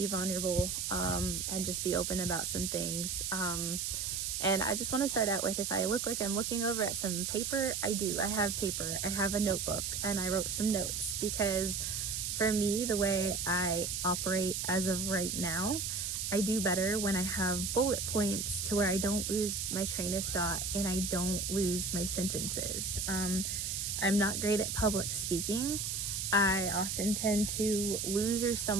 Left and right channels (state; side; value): noise; right; hiss, 2 dB below the sound